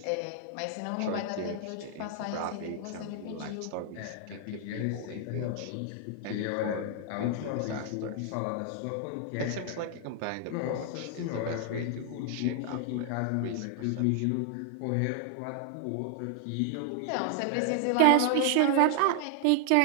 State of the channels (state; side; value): different; both; correlation 0.00